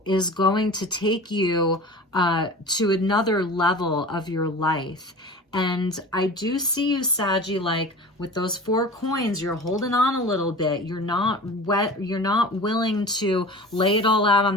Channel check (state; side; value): normal; both; correlation 0.37